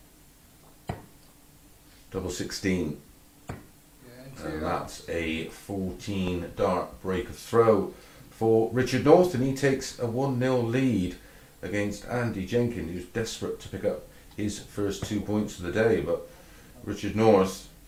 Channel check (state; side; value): identical; both; correlation 1.00